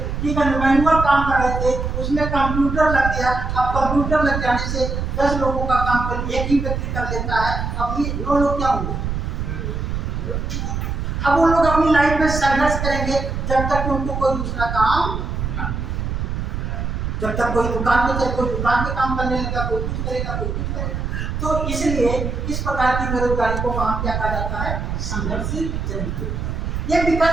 ठीक है, मैनुअल काम कर रहे थे, उसमें कंप्यूटर लग गया। अब कंप्यूटर लग जाने से 10 लोगों का काम कर एक ही व्यक्ति कर लेता है, अब ये 9 लोग क्या होंगे? अब वो लोग अपनी लाइफ में संघर्ष करेंगे जब तक कि उनको कोई दूसरा काम ना, जब तक कोई दुकान पे चले, कोई दुकान पे काम करने लगा, कोई कुछ करेगा, कोई कुछ करेगा। तो इसलिए इस प्रकार की बेरोजगारी को वहाँ क्या कहा जाता है? संघर्ष जनित बेरोजगारी। ये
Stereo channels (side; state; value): right; noise; rumble, 3 dB below the sound